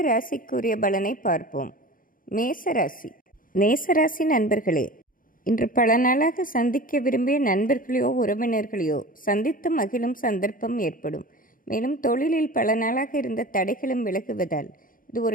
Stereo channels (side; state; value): right; late; 0.40 ms